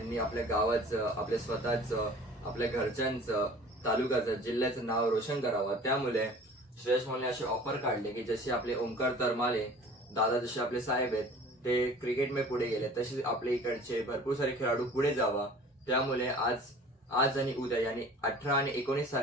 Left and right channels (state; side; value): normal; both; correlation 0.45